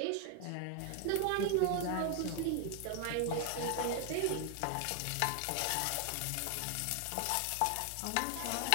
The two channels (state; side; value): different; both; correlation 0.00